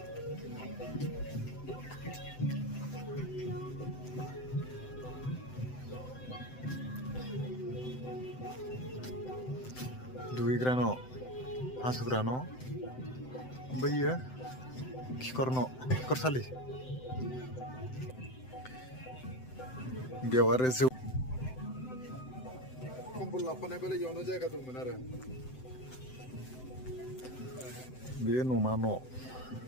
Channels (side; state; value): right; late; 7.8 ms